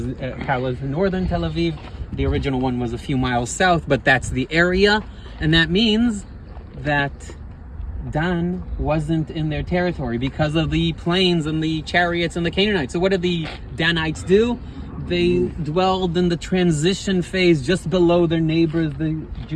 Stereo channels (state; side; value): identical; both; correlation 1.00